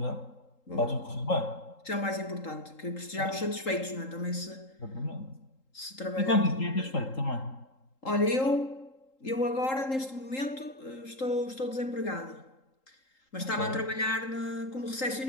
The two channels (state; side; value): late; right; 3.8 ms